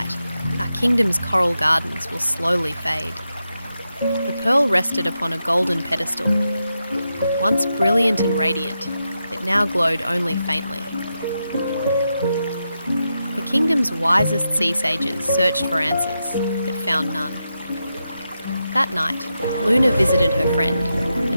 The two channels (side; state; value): both; inverted; correlation -0.87